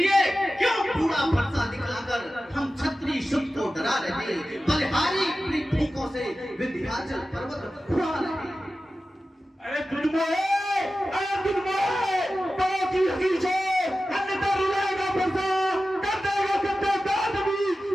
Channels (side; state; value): both; normal; correlation 0.94